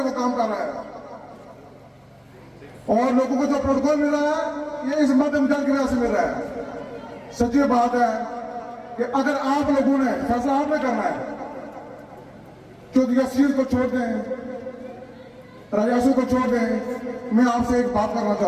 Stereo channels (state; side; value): identical; both; correlation 1.00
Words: काम कर रहा है, और लोगों को जो प्रोटोकॉल मिल रहा है ये इस मध्यम जल की वजह से मिल रहा है। सच्ची बात है कि अगर आप लोगों ने फैसला आपने करना है, चौधरी शीर को छोड़ दें, राजासू को छोड़ दें, मैं आपसे एक बात करना